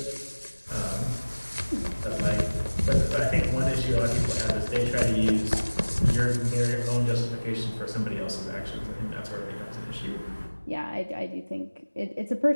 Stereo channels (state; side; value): inverted; both; correlation -1.00